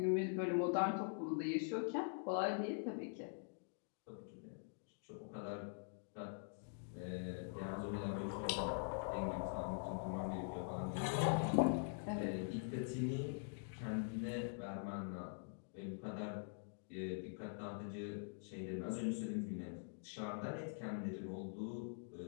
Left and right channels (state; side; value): silent; right; digital silence